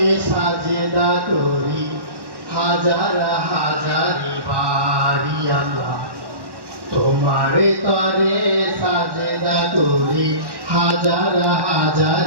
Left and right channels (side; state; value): left; late; 1.1 ms